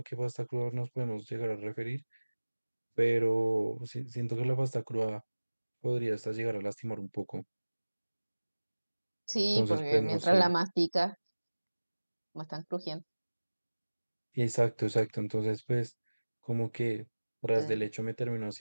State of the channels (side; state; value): both; inverted; correlation -1.00